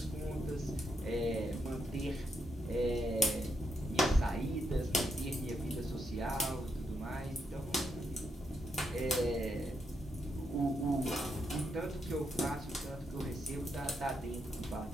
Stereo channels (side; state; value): both; normal; correlation 0.81